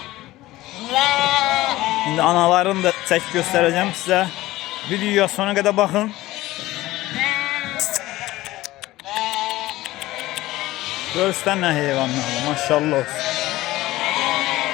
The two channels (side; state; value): right; quieter; 17.3 dB